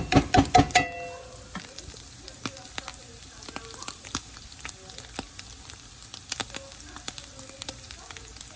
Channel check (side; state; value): both; identical; correlation 1.00